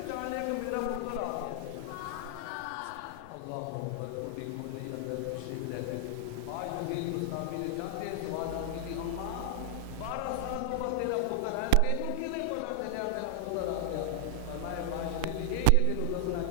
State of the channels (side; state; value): both; different; correlation 0.00